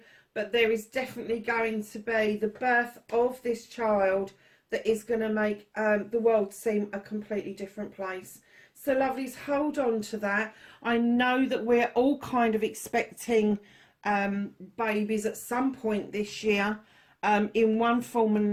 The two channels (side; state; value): both; identical; correlation 1.00